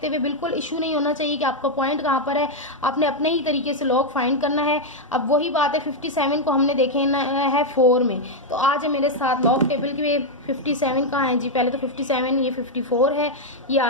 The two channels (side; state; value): both; normal; correlation 0.00